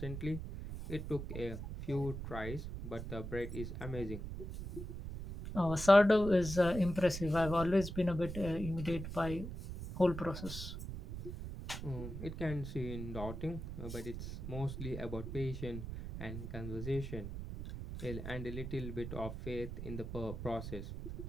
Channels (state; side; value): noise; right; rumble, 7 dB below the sound